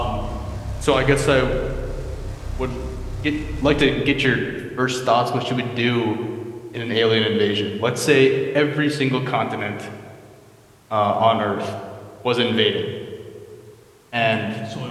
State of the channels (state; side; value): identical; both; correlation 1.00